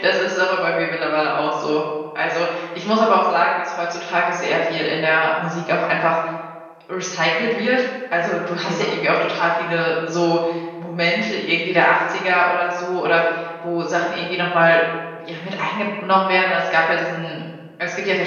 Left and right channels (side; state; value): both; identical; correlation 1.00